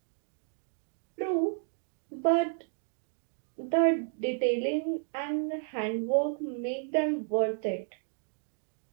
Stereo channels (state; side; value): silent; left; digital silence